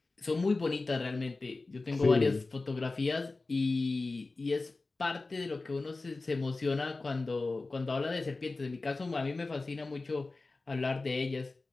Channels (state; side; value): quieter; right; 3.5 dB